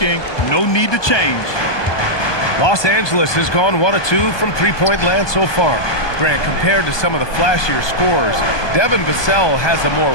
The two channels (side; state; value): right; late; 1.2 ms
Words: no need to change. Los Angeles has gone 1 of 2 from three-point land so far. Grant, compared to some of the flashier scores, Devin Vassell has a more